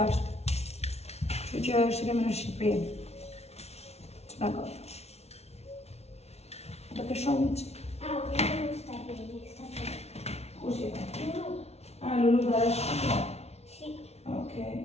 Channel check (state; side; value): late; right; 0.31 ms